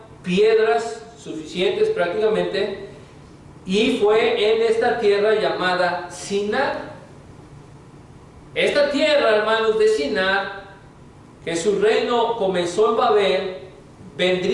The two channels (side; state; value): both; identical; correlation 1.00